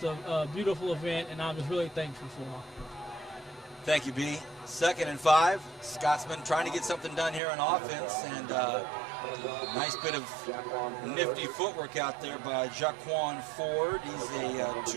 a beautiful event, and I'm just really thankful for them. Thank you, B. 2nd and 5. Scotsman trying to get something done here on offense, and nice bit of nifty footwork out there by Jaquan Ford. He's a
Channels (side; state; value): left; drops out; at 7.4 s